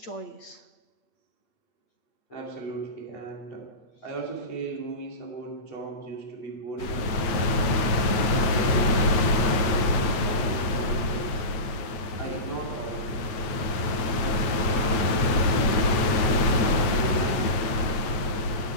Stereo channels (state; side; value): late; right; 8.6 ms